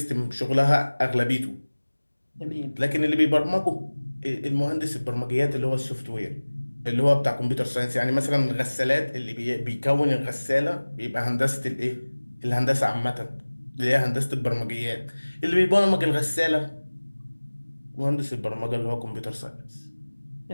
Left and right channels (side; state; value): both; inverted; correlation -1.00